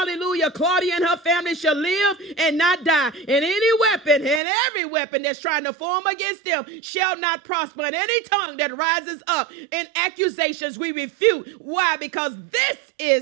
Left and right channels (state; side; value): drops out; left; at 4.4 s